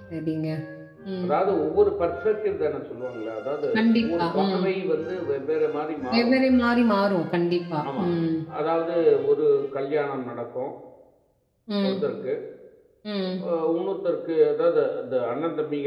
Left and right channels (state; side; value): identical; both; correlation 1.00